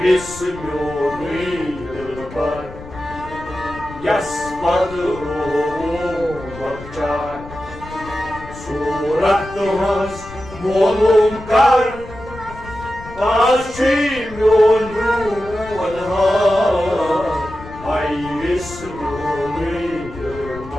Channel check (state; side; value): noise; left; rumble, 15 dB below the sound